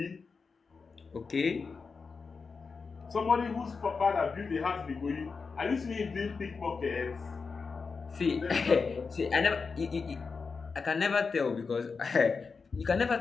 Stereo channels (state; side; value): quieter; right; 4.9 dB